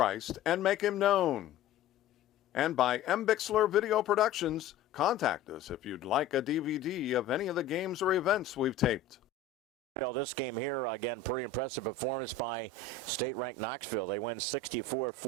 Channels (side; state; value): right; quieter; 6.0 dB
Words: and make him known. And by M. Bixler Video Productions, contact us if you'd like a DVD of any of the games or events we've taped. Well, this game here, again, pretty impressive performance by state-ranked Knoxville. They win